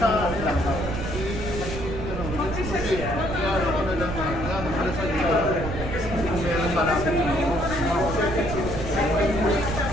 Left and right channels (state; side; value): noise; right; rumble, 6 dB below the sound